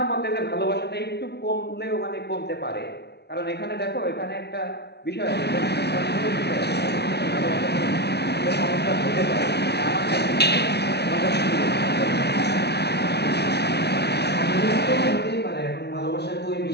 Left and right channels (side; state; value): right; late; 0.49 ms